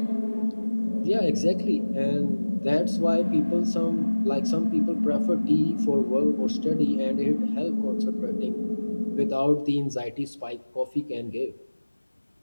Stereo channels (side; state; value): both; inverted; correlation -1.00